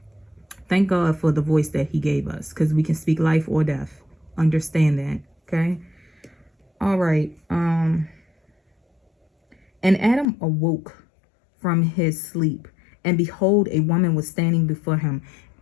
Thank God for the voice that he gave us, because we can speak life or death. Understand that, okay? All right. And Adam awoke from his sleep, and behold, a woman was standing before him.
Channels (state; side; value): drops out; right; at 10.2 s